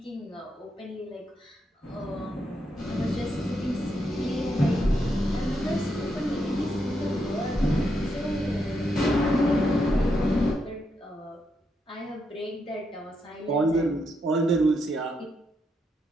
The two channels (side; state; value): both; normal; correlation 0.80